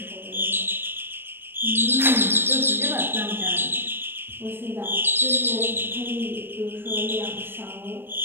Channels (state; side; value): late; left; 0.10 ms